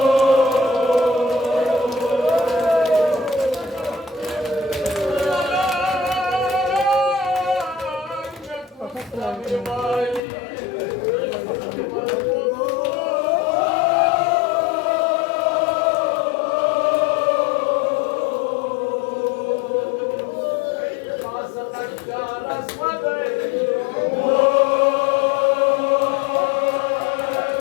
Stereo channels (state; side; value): drops out; right; at 10.2 s